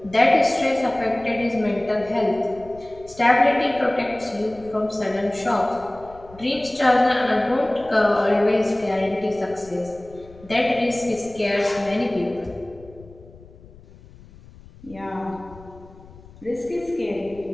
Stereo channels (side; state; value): left; noise; rumble, 22 dB below the sound